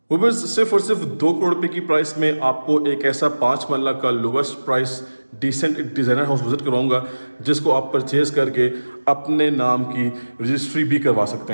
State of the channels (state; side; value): inverted; both; correlation -1.00